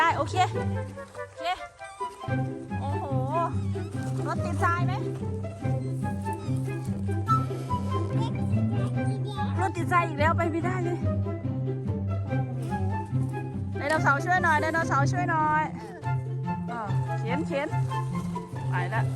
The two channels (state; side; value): identical; both; correlation 1.00